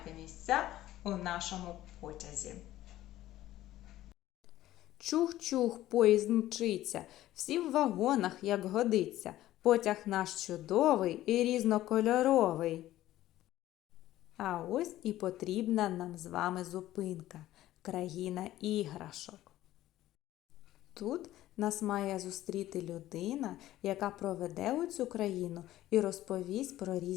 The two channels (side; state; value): right; quieter; 14.5 dB